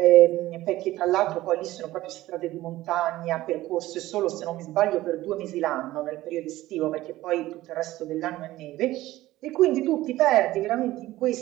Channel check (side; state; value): left; quieter; 16.4 dB